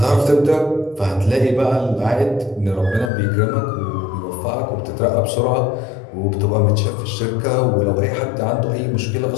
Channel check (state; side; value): drops out; right; at 3.1 s